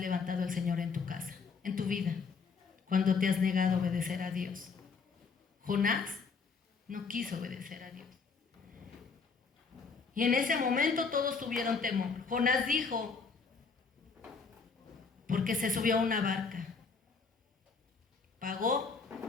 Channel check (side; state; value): right; quieter; 5.0 dB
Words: el Señor en tu casa, en tu vida, cuando te has negado a obedecer a Dios? Jonás no quiso obedecer a Dios. Y en ese momento todos tuvieron temor. Jonás dijo, porque se subió a una barca, pagó